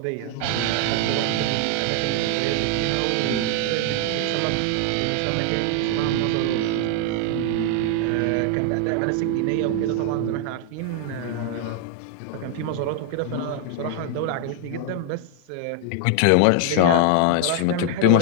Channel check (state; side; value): different; both; correlation 0.00